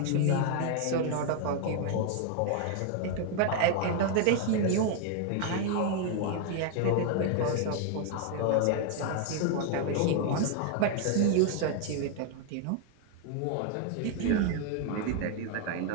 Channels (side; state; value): both; different; correlation 0.00